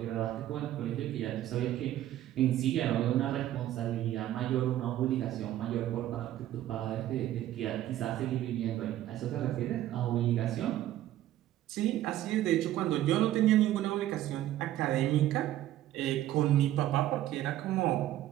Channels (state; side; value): quieter; left; 13.4 dB